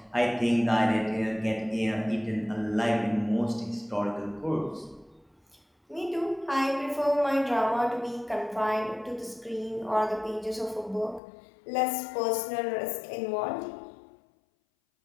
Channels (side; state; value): right; drops out; at 11.2 s